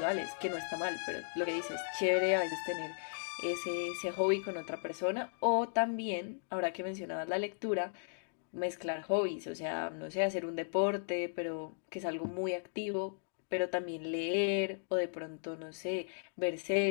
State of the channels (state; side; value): silent; right; digital silence